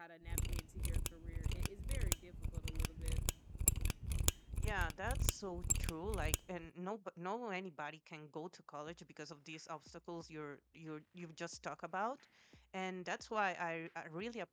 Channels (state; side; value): identical; both; correlation 1.00